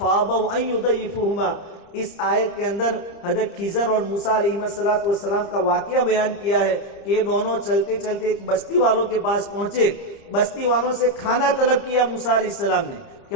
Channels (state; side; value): late; right; 30 ms